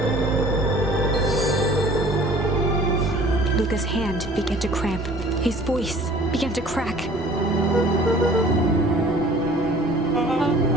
Luka's hand began to cramp. His voice began to crack.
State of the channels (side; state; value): right; noise; rumble, 17 dB below the sound